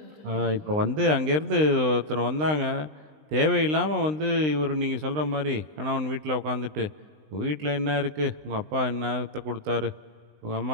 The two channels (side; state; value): left; late; 20 ms